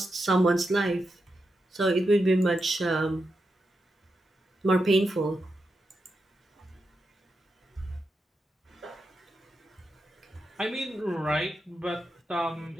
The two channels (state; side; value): normal; both; correlation 0.87